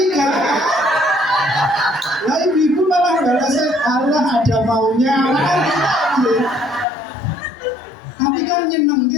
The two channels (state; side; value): drops out; right; at 6.9 s